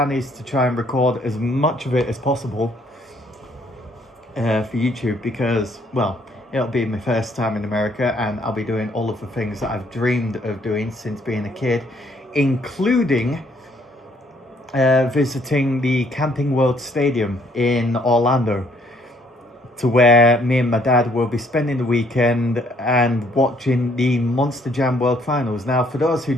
is to try and record as much of it as possible for YouTube because, well, it'll be my first time in America and I'll be doing all of the things that I've dreamed of doing since being a kid, including visiting the Camping World Stadium in Orlando, to where me and my dad will be spending the weekend and watching the Monster Jam World Finals. Now, for those who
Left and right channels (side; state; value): both; normal; correlation 0.65